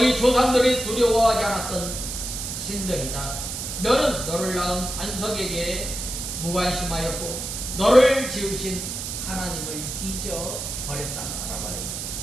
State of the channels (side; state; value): right; noise; hiss, 5 dB below the sound